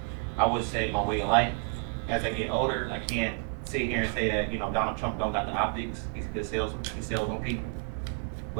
I would say my way of life. As I get older, I can't sit here and say that, Donald Trump don't got the optics. He's a good salesman. He sells on people.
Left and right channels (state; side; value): quieter; left; 34.3 dB